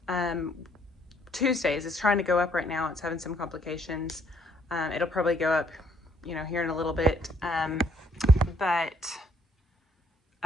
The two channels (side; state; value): both; normal; correlation 0.67